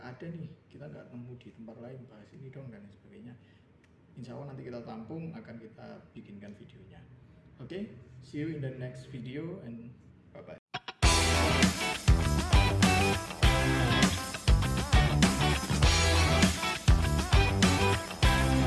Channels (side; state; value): both; identical; correlation 1.00